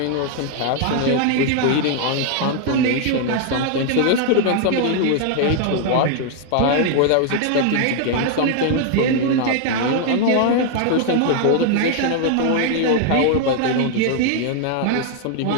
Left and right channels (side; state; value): both; different; correlation 0.00